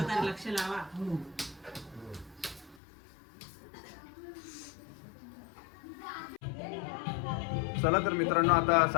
लक्ष लावा. चला तर मित्रांनो, आता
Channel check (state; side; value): drops out; right; at 2.8 s